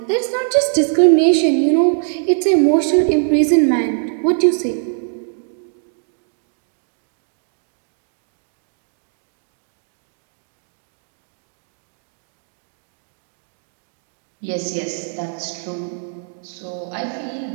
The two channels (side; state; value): left; silent; 65 dB below the other